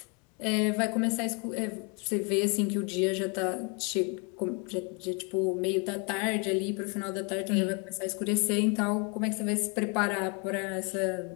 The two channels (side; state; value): right; quieter; 34.1 dB